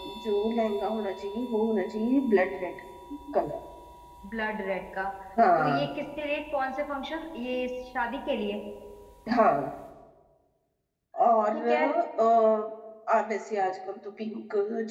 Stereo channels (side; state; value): both; identical; correlation 1.00